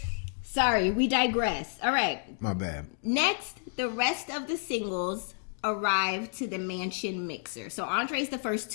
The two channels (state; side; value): silent; right; digital silence